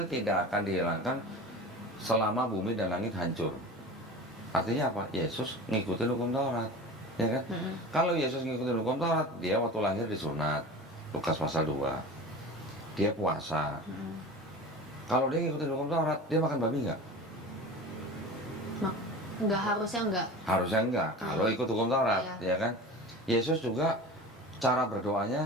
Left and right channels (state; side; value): normal; both; correlation 0.34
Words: tidak akan dihilangkan selama bumi dan langit hancur. Artinya apa? Yesus ngikutin hukum Taurat, ya kan? Kalau Yesus ngikutin hukum Taurat, dia waktu lahir disunat, Lukas pasal 2. Dia puasa. Kalau dia ngikutin hukum Taurat, dia makan babi nggak? Enggak, harusnya enggak. Harusnya enggak, kalau ikut hukum Taurat, ya kan? Yesus juga cara